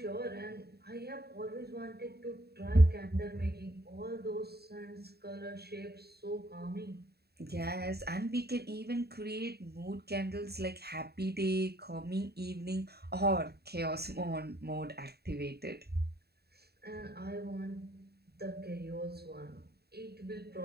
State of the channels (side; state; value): left; late; 0.47 ms